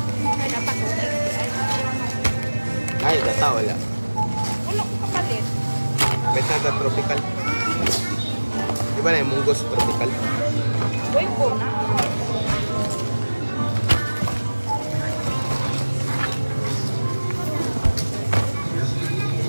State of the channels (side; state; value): both; inverted; correlation -1.00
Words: Ay, gata wala. Wala ko kapalit. Beta na tropical. Di ba na yung munggos tropical? Boy po na.